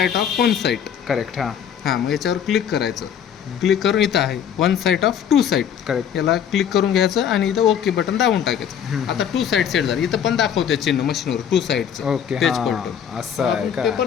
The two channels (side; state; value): right; quieter; 8.6 dB